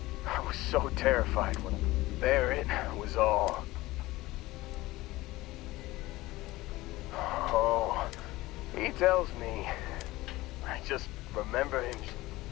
I was so terrified when there it was all. Oh, he tells me. I just remember him.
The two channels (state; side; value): quieter; right; 18.8 dB